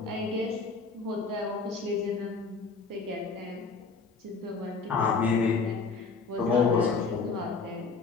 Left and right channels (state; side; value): quieter; right; 4.5 dB